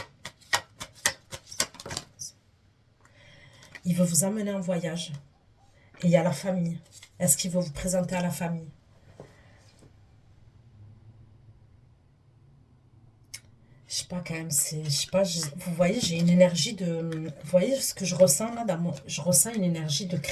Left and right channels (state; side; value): identical; both; correlation 1.00